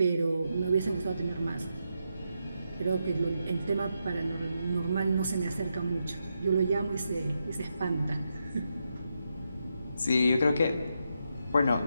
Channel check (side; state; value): both; inverted; correlation -0.84